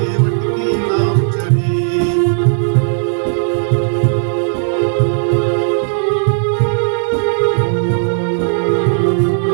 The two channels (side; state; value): left; silent; digital silence